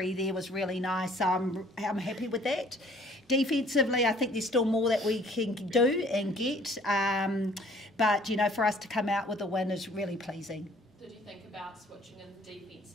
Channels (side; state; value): both; normal; correlation 0.56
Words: there was really nice. I'm happy with that. Defensively, I think there's still more that we can do and get. But, you know, for us to come out with a win is really pleasing. Did you think about switching in the defence